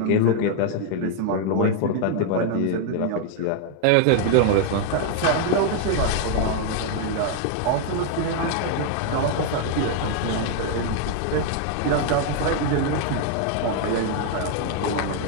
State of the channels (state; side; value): different; both; correlation 0.00